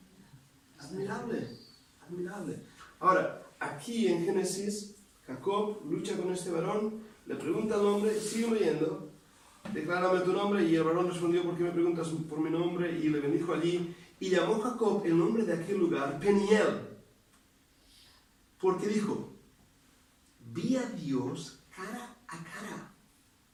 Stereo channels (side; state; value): both; identical; correlation 1.00